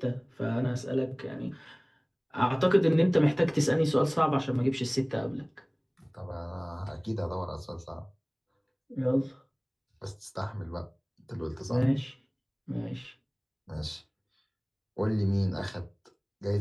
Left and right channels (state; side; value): identical; both; correlation 1.00